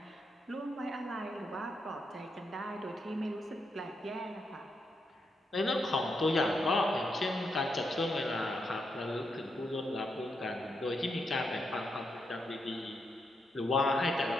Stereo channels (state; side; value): normal; both; correlation 0.82